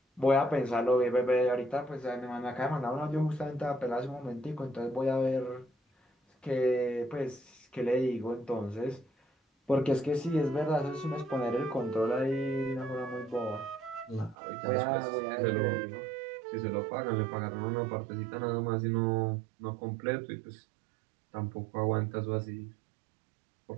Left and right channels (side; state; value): left; drops out; at 14.4 s